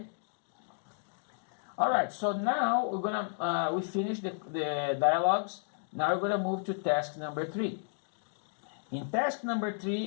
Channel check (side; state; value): right; silent; digital silence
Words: All right, so now we're gonna, we finished the dialogues. Now we're gonna move to task number 3. In task number